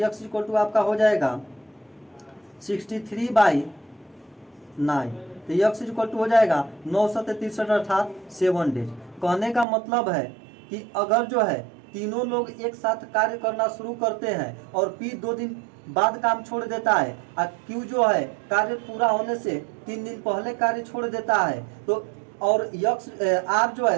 इज इक्वल टू आपका हो जाएगा 63/9, तो यक्स इज इक्वल टू हो जाएगा 963 अर्थात 7 डेज। कहने का मतलब है कि अगर जो है तीनों लोग एक साथ कार्य करना शुरू करते हैं और पी 2 दिन बाद काम छोड़ देता है और क्यू जो है कार्य पूरा होने से 3 दिन पहले कार्य छोड़ देता है, तो और यक्स आर जो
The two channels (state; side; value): drops out; left; at 9.7 s